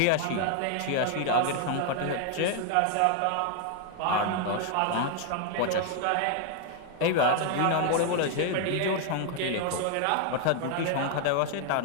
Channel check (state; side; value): different; both; correlation 0.00